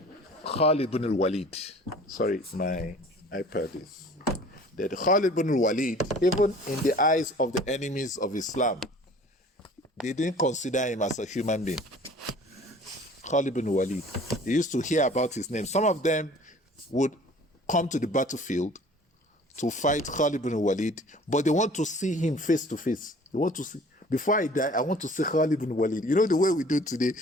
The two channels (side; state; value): both; normal; correlation 0.49